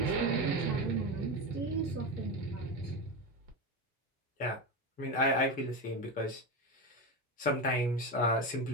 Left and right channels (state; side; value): normal; both; correlation 0.17